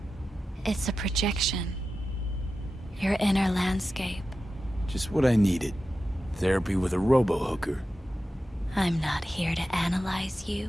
It's a projection. Your inner landscape. Just what I needed. Therapy with a robo-hooker. I'm not here to analyze you.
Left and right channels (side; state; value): both; normal; correlation 0.92